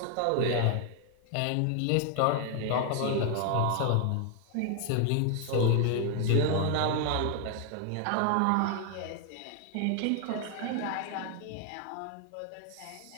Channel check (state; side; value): different; both; correlation 0.00